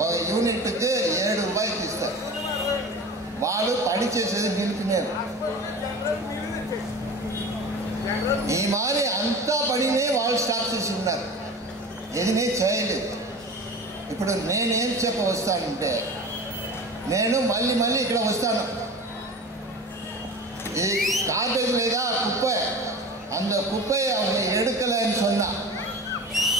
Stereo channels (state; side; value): normal; both; correlation 0.35